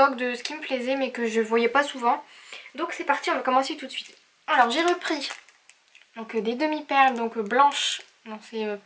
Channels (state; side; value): identical; both; correlation 1.00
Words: de ce qui me plaisait mais que je voyais pas souvent. Donc c'est parti, on va commencer tout de suite. Alors j'ai repris donc des demi-perles donc blanches, non c'est